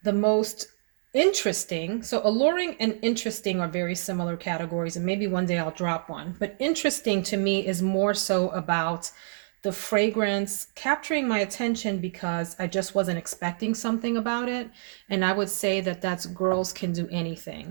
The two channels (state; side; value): silent; left; digital silence